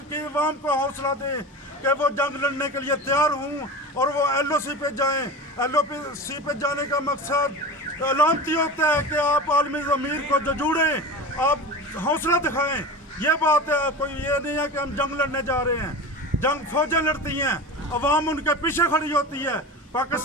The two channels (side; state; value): both; normal; correlation 0.30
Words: की अवाम को हौसला दें कि वो जंग लड़ने के लिए तैयार हूँ और वो LOC पे जाएं। LOC पे जाने का मकसद अलामती होता है कि आप आलमी ज़मीर को जुड़ें, आप हौसला दिखाएं। ये बात है, कोई ये नहीं है कि हम जंग लड़ने जा रहे हैं। जंग फौजें लड़ती हैं, अवाम उनके पीछे खड़ी होती है।